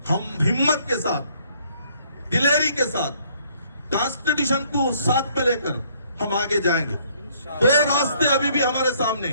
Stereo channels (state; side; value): inverted; both; correlation -0.64